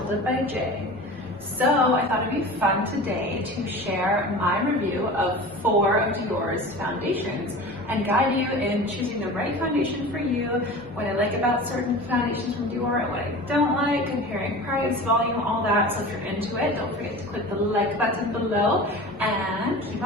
Untitled by Jay. So I thought it'd be fun today to share my review of 4 of Dior's foundations and guide you in choosing the right foundation for you, what I like about certain foundations from Dior and what I don't like, comparing price, volume, all that. So if you're into it, don't forget to click the like button below and keep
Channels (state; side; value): normal; both; correlation 0.35